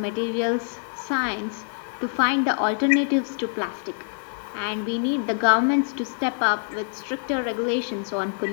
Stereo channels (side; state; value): right; silent; digital silence